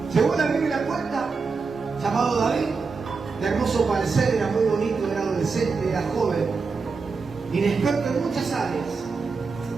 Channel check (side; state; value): left; quieter; 4.7 dB